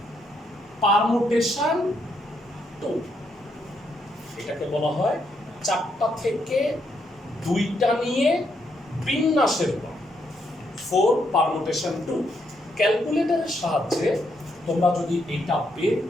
পারমুটেশন 2। এটাকে বলা হয় 4টা থেকে 2টা নিয়ে বিন্যাসের উপায় 4 পারমুটেশন 2। ক্যালকুলেটরের সাহায্যে তোমরা যদি এটা বের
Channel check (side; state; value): both; normal; correlation 0.77